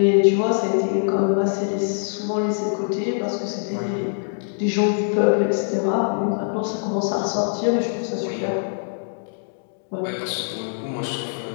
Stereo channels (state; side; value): silent; right; digital silence